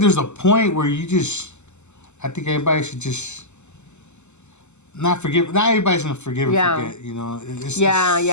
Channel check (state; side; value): late; right; 0.83 ms